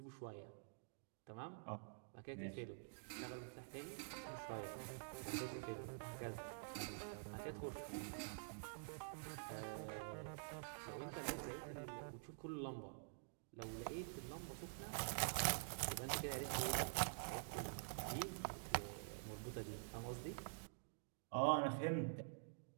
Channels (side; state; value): left; silent; digital silence